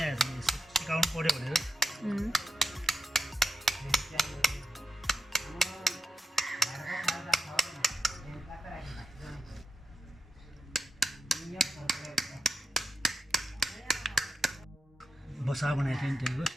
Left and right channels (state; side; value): normal; both; correlation 0.87